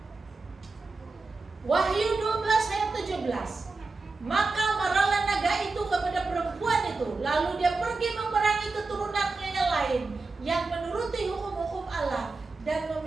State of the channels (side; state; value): left; quieter; 3.8 dB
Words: Wahyu 12 ayat 17, maka marahlah naga itu kepada perempuan itu, lalu dia pergi memerangi keturunannya yang lain yang menuruti hukum-hukum Allah dan